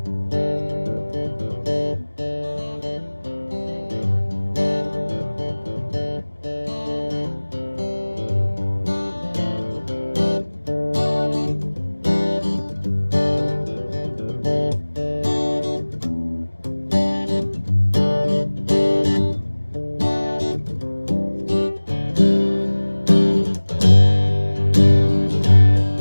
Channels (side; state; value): both; inverted; correlation -1.00